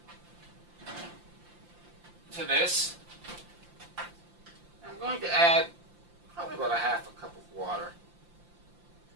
to this. I'm going to add probably about a half a cup of water.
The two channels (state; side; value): late; left; 5.8 ms